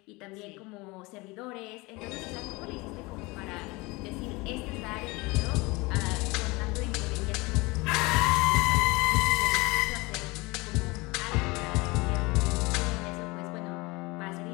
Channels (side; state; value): right; quieter; 24.1 dB